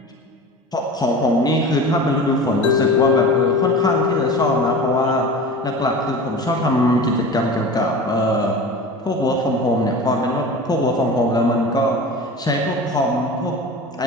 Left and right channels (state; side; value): normal; both; correlation 0.34